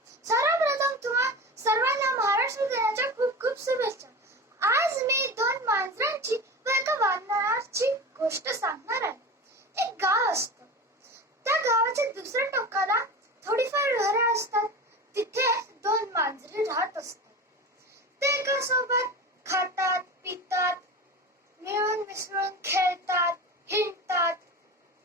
सर्वप्रथम तुम्हा सर्वांना महाराष्ट्र दिनाच्या खूप खूप शुभेच्छा. आज मी दोन मांजरांची व एका वानराची गोष्ट सांगणार आहे. एक गाव असतं. त्या गावाच्या दुसऱ्या टोकाला थोडीफार घरे असतात. तिथे दोन मांजरे राहत असतात. ते एका सोबत खातात, पितात, मिळून मिसळून खेळतात, हिंडतात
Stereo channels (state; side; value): normal; both; correlation 0.29